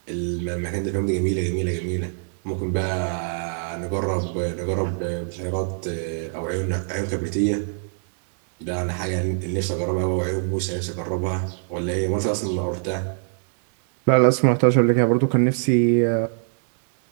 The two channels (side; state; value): left; silent; digital silence